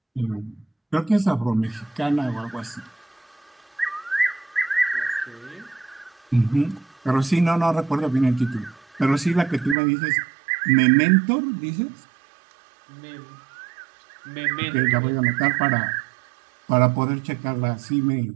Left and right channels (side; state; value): left; drops out; at 9.8 s